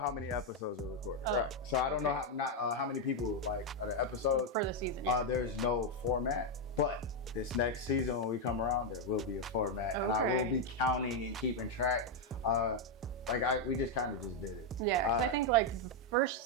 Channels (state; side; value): normal; both; correlation 0.02